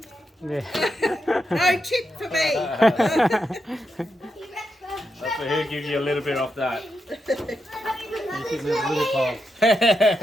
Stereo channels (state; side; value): normal; both; correlation 0.85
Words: Yeah. No tip for me. That's for he'll give you a little bit off that. You can have a little pile.